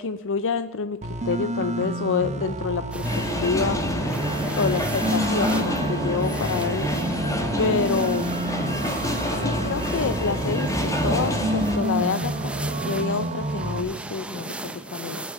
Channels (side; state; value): both; normal; correlation 0.24